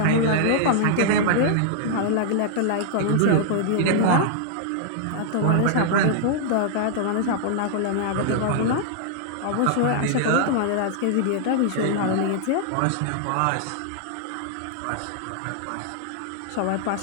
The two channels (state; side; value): different; both; correlation -0.01